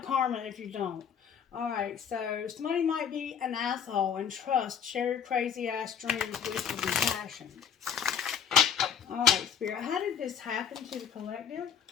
karma if you don't. Alright, so somebody might be an asshole, and trust, share your crazy ass dreams, wishes, and passion. Alright, Spirit, how did this happen to the collective?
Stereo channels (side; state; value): right; quieter; 7.5 dB